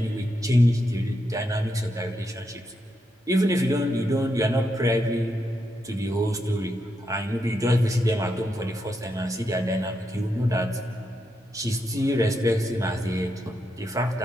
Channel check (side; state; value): both; normal; correlation 0.83